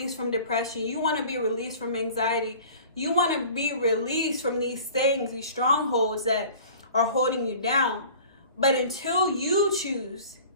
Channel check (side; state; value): both; inverted; correlation -0.45